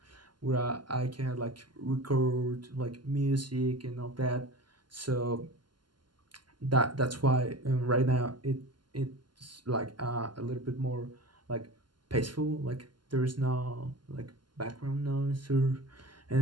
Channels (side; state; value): left; late; 0.71 ms